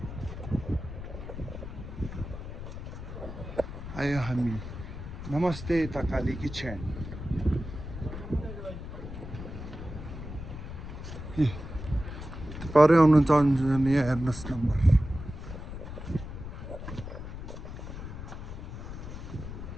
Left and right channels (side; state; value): left; noise; rumble, 9 dB below the sound